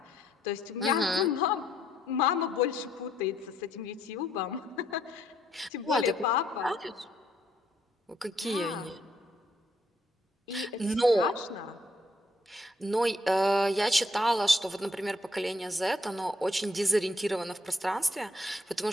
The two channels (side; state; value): both; normal; correlation 0.71